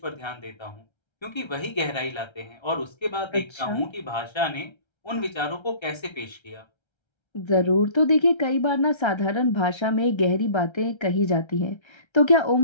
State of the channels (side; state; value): right; late; 1.3 ms